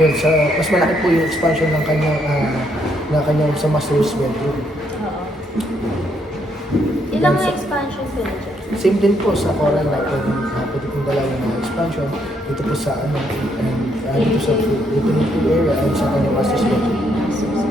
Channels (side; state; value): both; normal; correlation 0.73